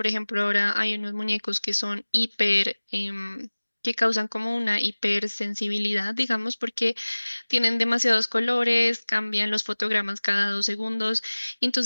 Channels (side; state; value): both; inverted; correlation -1.00